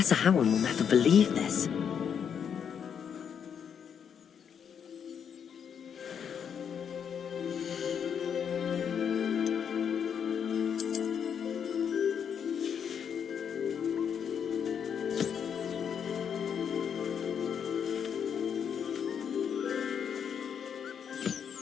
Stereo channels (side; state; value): right; quieter; 7.7 dB